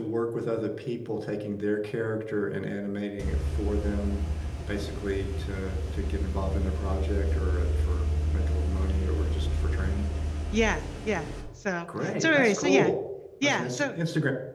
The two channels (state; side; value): identical; both; correlation 1.00